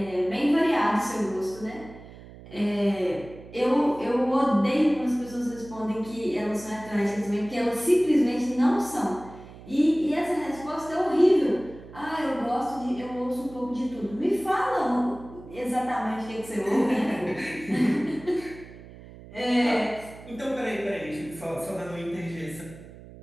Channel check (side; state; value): right; noise; hum, 18 dB below the sound